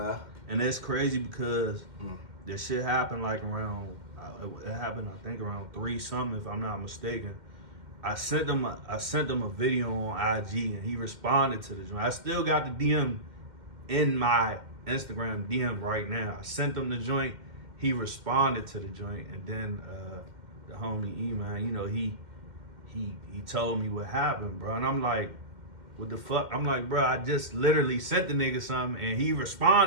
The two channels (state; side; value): late; left; 2.1 ms